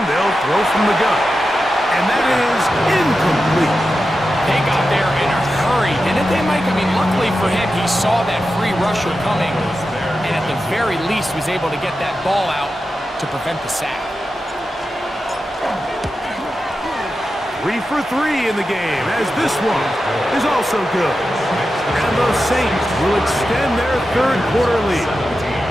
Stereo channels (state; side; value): normal; both; correlation 0.91